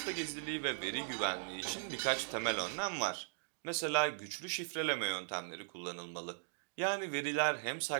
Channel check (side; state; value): left; silent; digital silence